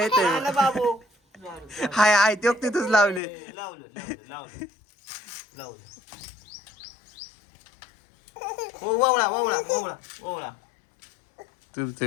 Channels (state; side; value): drops out; right; at 3.2 s